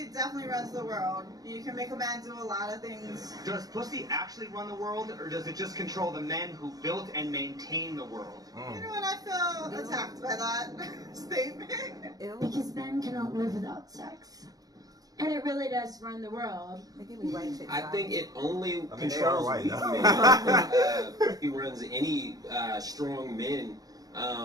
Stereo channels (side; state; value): left; late; 0.18 ms